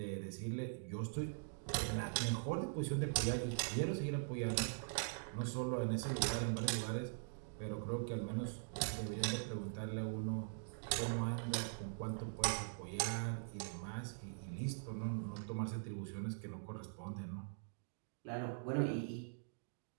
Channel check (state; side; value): silent; left; digital silence